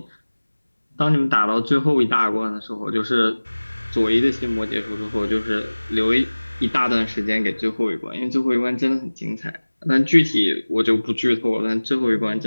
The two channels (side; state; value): both; inverted; correlation -1.00